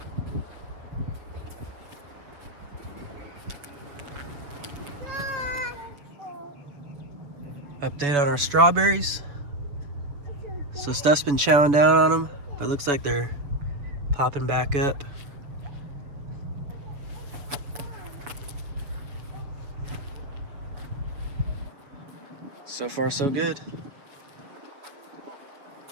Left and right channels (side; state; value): left; late; 7.1 ms